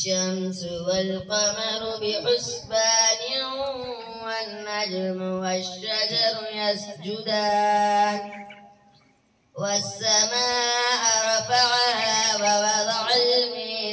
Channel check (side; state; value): both; identical; correlation 1.00